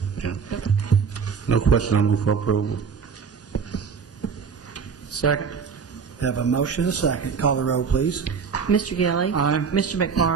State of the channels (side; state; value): left; quieter; 6.0 dB